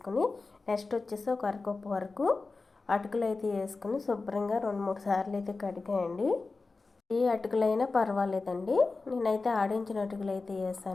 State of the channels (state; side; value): quieter; right; 3.8 dB